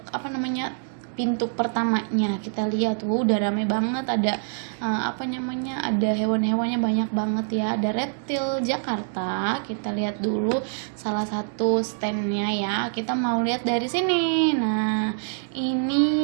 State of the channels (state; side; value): silent; left; 62 dB below the other